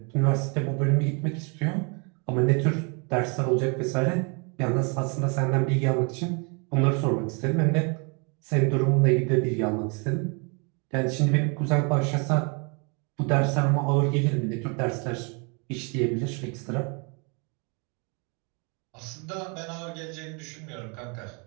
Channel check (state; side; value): quieter; left; 34.1 dB